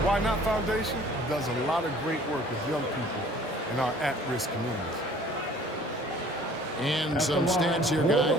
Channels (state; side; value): normal; both; correlation 0.52